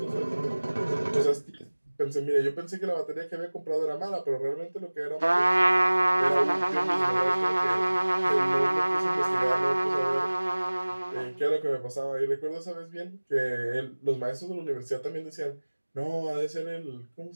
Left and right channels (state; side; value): inverted; both; correlation -1.00